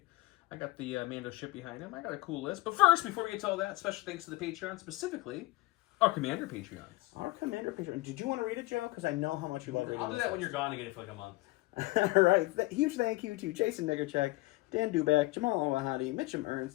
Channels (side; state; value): right; quieter; 21.0 dB